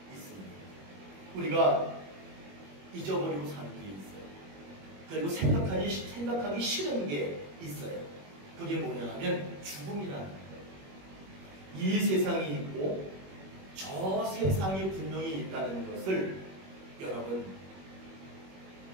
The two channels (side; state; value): left; late; 21 ms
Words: 있습니다. 우리가 잊어버리고 사는 게 있어요. 그리고 생각하기 싫은 게 있어요. 그게 뭐냐 하면 죽음이라는 거예요. 이 세상이 있고 저 세상이 분명히 있다는 것을 여러분